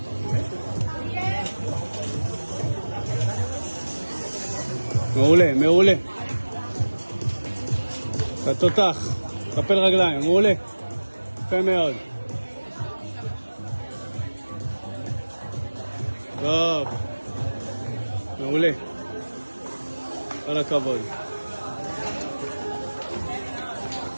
מעולה, מעולה. אתה תותח, קפל רגליים, מעולה. יפה מאוד. טוב. מעולה. כל הכבוד.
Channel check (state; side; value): inverted; both; correlation -1.00